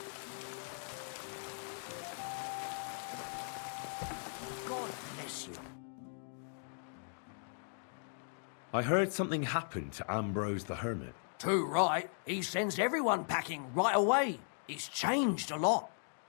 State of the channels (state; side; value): silent; right; digital silence